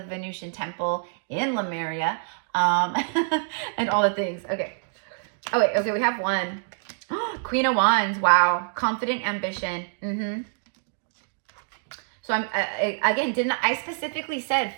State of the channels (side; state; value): left; silent; digital silence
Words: Venusian Temple in Lemuria. And all the things. Okay. Oh, wait. Okay, we have one. Queen of Wands. Wow. Confident ambition. So I'm again, I specifically said